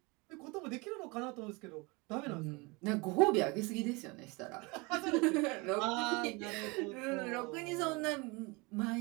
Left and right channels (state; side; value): quieter; left; 27.0 dB